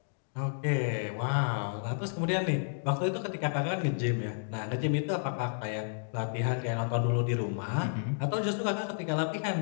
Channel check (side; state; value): right; silent; digital silence